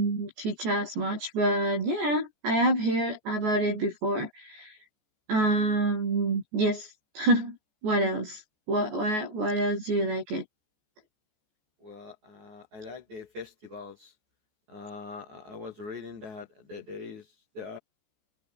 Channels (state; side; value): late; left; 14 ms